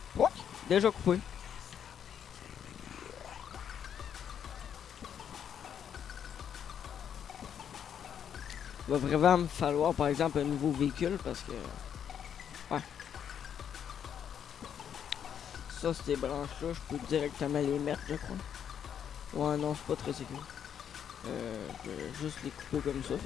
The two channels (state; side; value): quieter; right; 8.6 dB